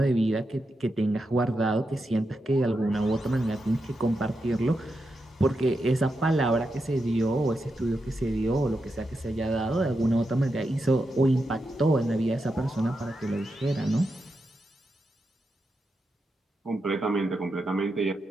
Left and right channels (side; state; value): both; normal; correlation 0.87